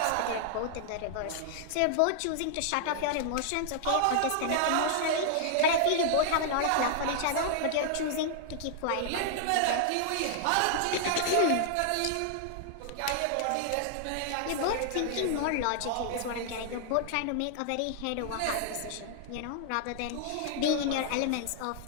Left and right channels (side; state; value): both; different; correlation -0.01